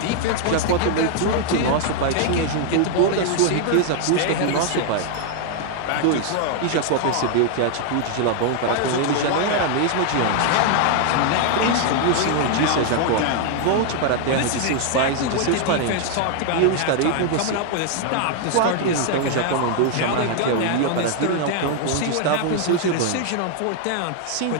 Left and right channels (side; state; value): both; different; correlation 0.00